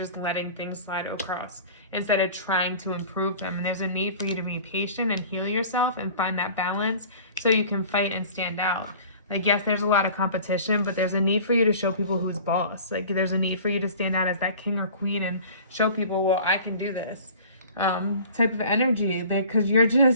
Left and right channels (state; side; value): inverted; both; correlation -0.44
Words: letting things slide across instead of trying to improve them. And there's a need for you to be patient and heal yourself and find that balance so you can fight and stand out. Like, yes, there's a lot of competition, but there's a need for you to show people who's boss. Like, there's a need for you to stand out as that king or queen and show people, well, I can do this. Type of energy, because you're